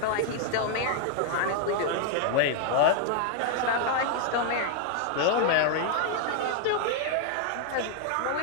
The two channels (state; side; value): different; both; correlation 0.00